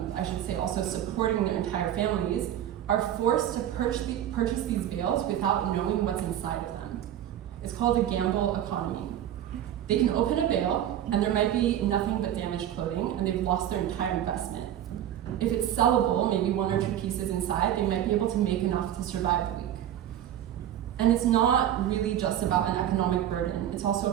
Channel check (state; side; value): quieter; left; 11.2 dB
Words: I should say, also supporting their entire families, are forced to purchase these bales without knowing what's inside of them. It's called a gamble economy. They can open a bale, and there might be nothing but damaged clothing, and they've lost their entire investment. If it's sellable, maybe 1 or 2 pieces inside, they might be able to make enough to survive the week. And it's not really just about an economic burden, it's